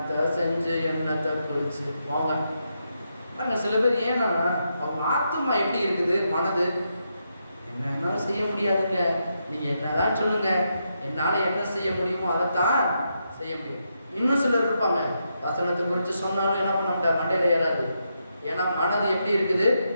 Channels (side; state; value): both; inverted; correlation -0.82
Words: செஞ்சு என்னத்தை குளிச்சு போங்க பாருங்க. சில பேர் ஏன்னா அவங்க ஆத்மா எப்படி இருக்குது, மனது என்ன செய்ய முடியாதுங்க, நீங்க என்னதான் சொல்லுங்க, என்னால என்ன செய்ய முடியுமோ அதைத்தான் செய்ய முடியும். இன்னும் சிலர் இருப்பாங்க, வசனத்தை குறித்து சொன்னாலும் என்ன பண்ண முடியாது, மண்டையில ஏறாது. ஏன்னா மனது எப்படி இருக்குது,